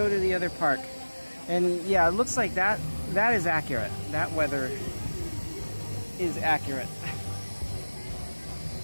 to the other park. And yeah, it looks like that is accurate. That weather is accurate.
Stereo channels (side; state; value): both; inverted; correlation -1.00